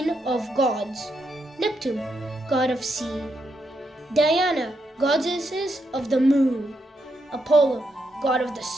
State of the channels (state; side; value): normal; both; correlation 0.81